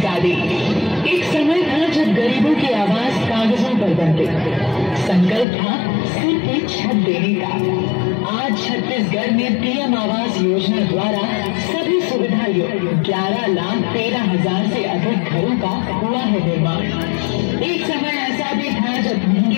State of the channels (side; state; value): right; drops out; at 5.5 s